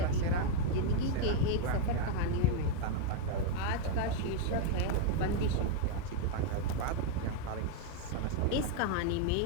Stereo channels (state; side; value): different; both; correlation 0.00